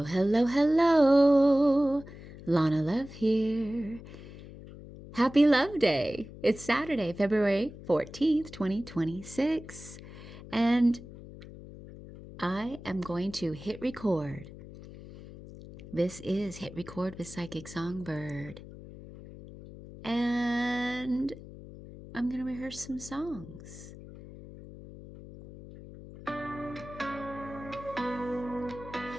hello, hello. Lana Love here. Happy Love Day. It's Saturday, February 14th, 2026. And I am going to hit record. This is Hit Record with Psychic Songbird. And I'm going to rehearse some songs.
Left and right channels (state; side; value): noise; left; hum, 15 dB below the sound